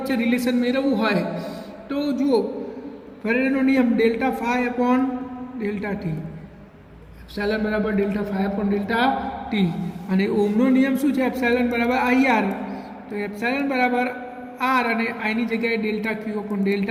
રિલેશન મેળવવું હોય તો જુઓ, ફેરેડેનો નિયમ delta phi upon delta t. Epsilon બરાબર delta phi upon delta t. અને ઓમનો નિયમ શું છે? એપ્સાયલન બરાબર IR. તો એપ્સાયલન બરાબર R અને આની જગ્યાએ delta Q upon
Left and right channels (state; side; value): identical; both; correlation 1.00